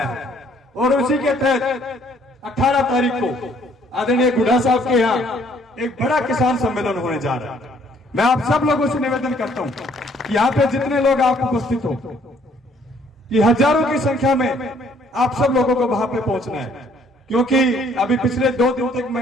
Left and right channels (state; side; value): normal; both; correlation 0.63